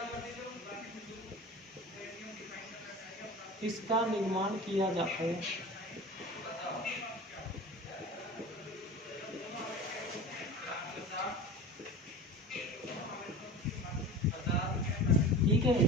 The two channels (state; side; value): normal; both; correlation 0.35